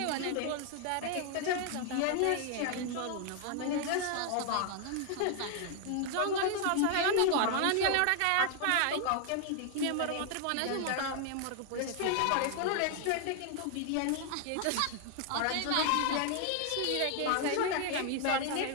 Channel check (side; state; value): both; different; correlation 0.00